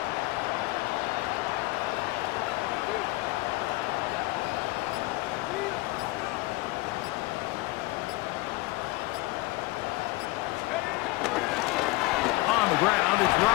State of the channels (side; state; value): right; quieter; 20.6 dB